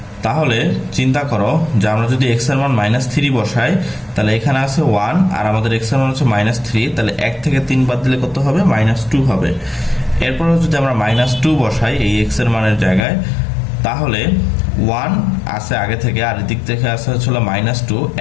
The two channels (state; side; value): drops out; right; at 13.1 s